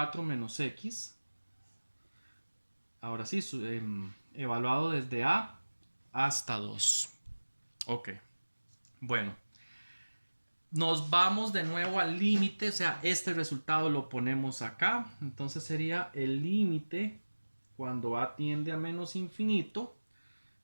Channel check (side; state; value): both; inverted; correlation -1.00